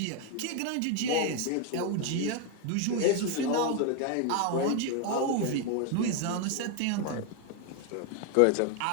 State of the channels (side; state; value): both; different; correlation 0.01